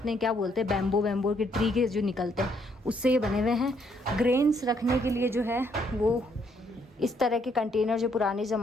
क्या बोलते हैं, बैम्बो के ट्री के जो निकलते हैं उससे ये बने हुए हैं। ग्रेन्स रखने के लिए जो है वो इस तरह के कंटेनर जो पुराने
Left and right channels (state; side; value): normal; both; correlation 0.70